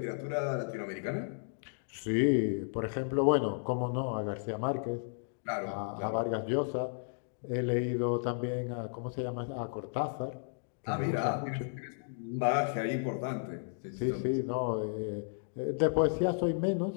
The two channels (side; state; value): right; silent; digital silence